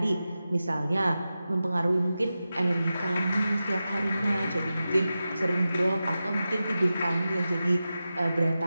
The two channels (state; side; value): inverted; both; correlation -0.92